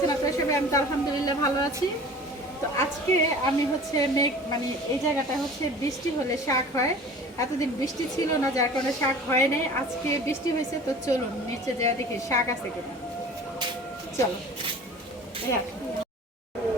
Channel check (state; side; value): normal; both; correlation 0.43